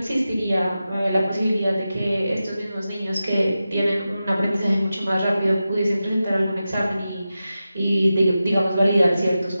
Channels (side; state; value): both; inverted; correlation -0.92